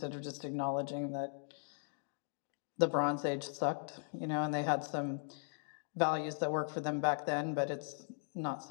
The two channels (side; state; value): right; silent; digital silence